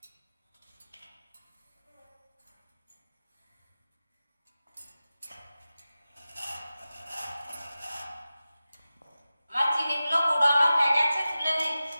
আমার চিনিগুলো গুঁড়ানো হয়ে গেছে, তুলে নিচ্ছি।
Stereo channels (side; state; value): both; inverted; correlation -0.95